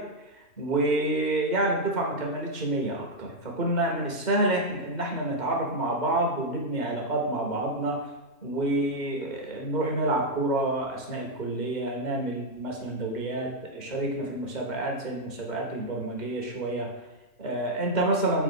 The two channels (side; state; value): right; late; 2.1 ms